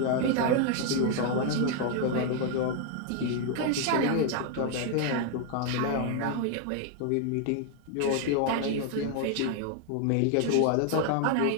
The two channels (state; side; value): different; both; correlation 0.00